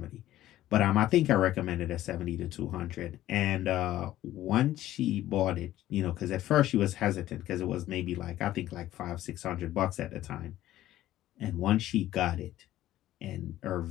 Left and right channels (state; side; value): quieter; right; 14.1 dB